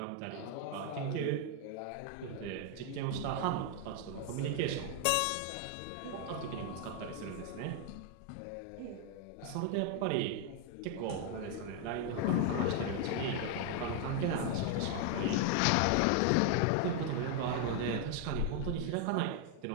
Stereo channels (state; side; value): different; both; correlation 0.00